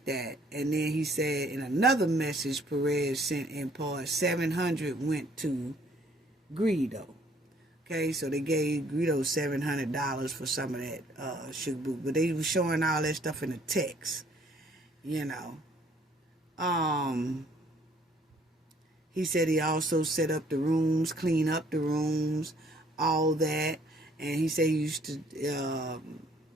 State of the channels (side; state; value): both; normal; correlation 0.61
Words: that. And then he said in another message Perez sent in part, 700 went to Greedo. Okay, so they gave Greedo $700 for some of that sugar book, but they were showing all that stuff in the text, you know. He said he also set up the rooms, clean up the rooms, all that. And he said he used to,